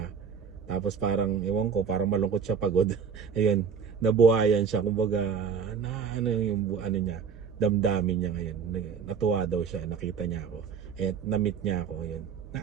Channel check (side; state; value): left; quieter; 6.2 dB